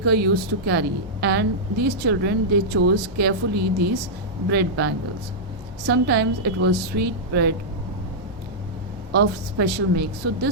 used to carry, and these children, they chose carefully these bread bangles. Sometimes it was sweet bread of special make. So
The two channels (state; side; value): normal; both; correlation -0.09